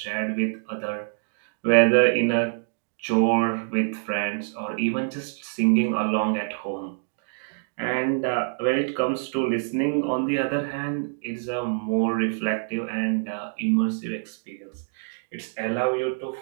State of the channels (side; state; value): left; silent; digital silence